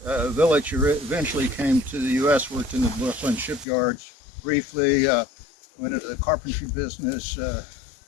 Willich eventually came to the U.S., worked in the Brooklyn shipyards briefly, went into the carpentry business,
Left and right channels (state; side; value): drops out; right; at 3.7 s